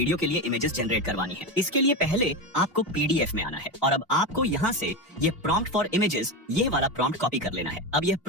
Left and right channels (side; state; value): both; normal; correlation 0.17